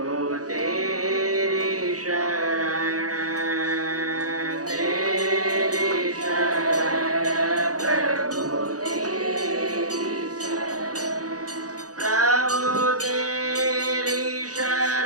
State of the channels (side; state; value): left; late; 0.67 ms